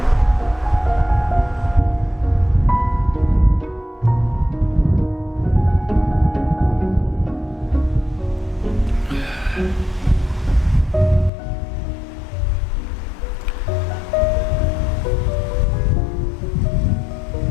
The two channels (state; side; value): drops out; right; at 11.3 s